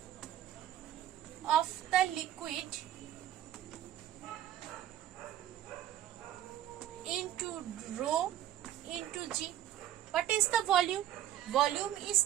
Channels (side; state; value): left; quieter; 12.2 dB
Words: of the liquid into rho into G. What is the volume? Volume